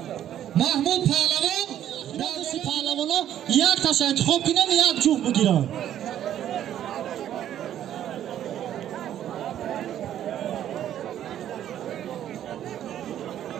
محمود پهلوان دست پهلوانا یک تاش انتخاب کنن یک جوخ بگیرن.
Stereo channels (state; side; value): quieter; left; 11.0 dB